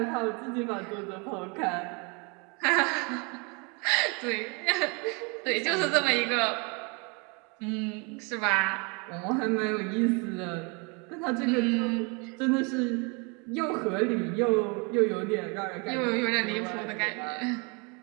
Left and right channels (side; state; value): left; quieter; 31.8 dB